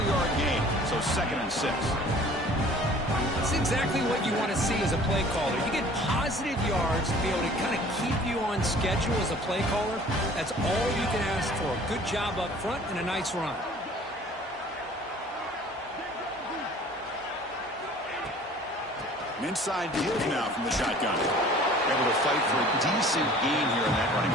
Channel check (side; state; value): both; normal; correlation 0.49